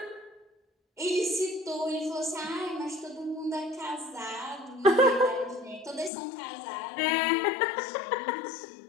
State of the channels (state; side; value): drops out; right; at 6.1 s